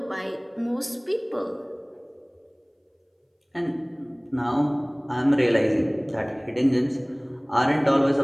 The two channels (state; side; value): identical; both; correlation 1.00